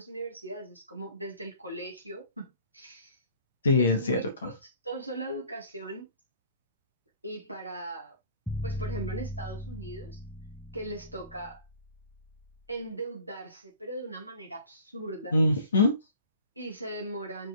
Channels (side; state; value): both; inverted; correlation -0.47